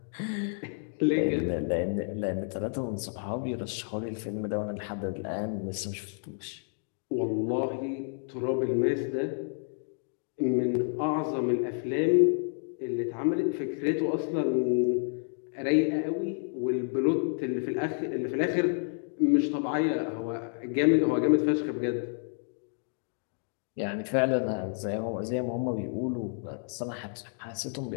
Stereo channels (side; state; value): right; silent; 58 dB below the other